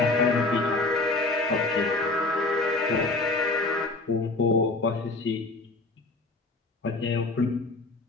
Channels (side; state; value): right; quieter; 3.2 dB